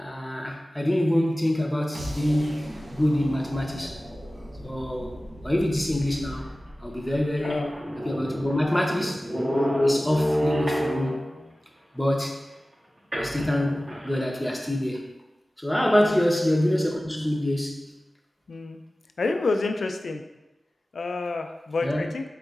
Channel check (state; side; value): normal; both; correlation 0.96